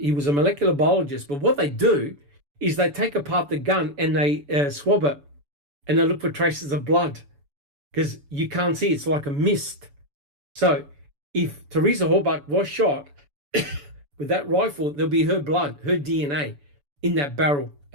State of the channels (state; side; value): late; left; 7.0 ms